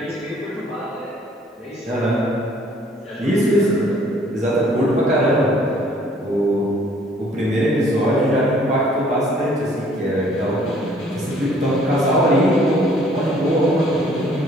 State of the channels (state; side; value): normal; both; correlation 0.59